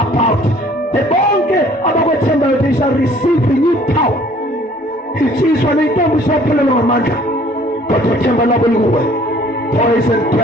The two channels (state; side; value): normal; both; correlation 0.56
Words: The bonke about what they shall receive renewed power. It is when they don't stop pulling on Amanda. But boys and